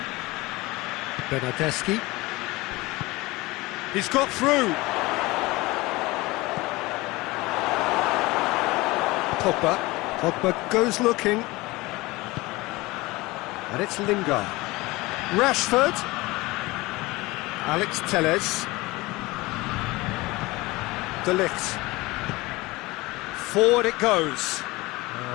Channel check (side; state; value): right; quieter; 21.4 dB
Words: Bernardeschi. He's got through. Pogba. Pogba goes looking. And it's Lingard. Rashford. Alex Telles. De Ligt. Forward it goes.